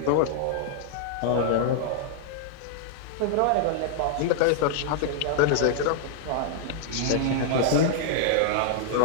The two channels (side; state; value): both; different; correlation -0.01